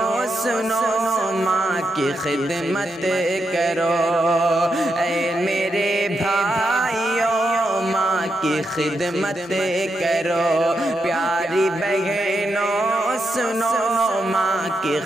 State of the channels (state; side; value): normal; both; correlation 0.84